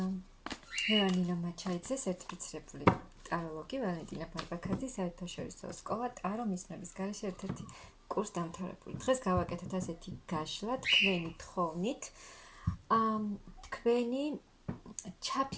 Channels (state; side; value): identical; both; correlation 1.00